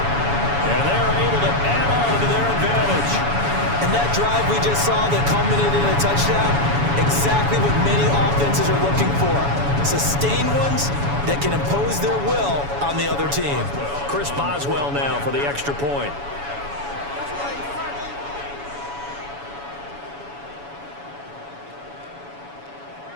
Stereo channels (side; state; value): left; late; 7.1 ms